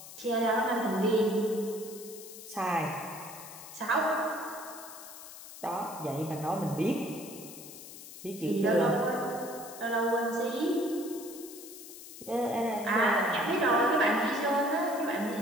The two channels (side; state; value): left; noise; hiss, 14 dB below the sound